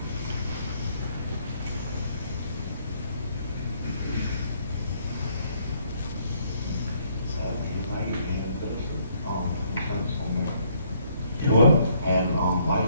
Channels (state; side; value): inverted; both; correlation -0.67